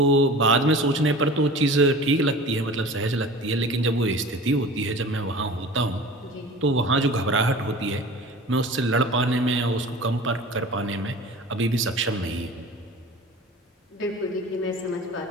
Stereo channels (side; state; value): both; normal; correlation 0.39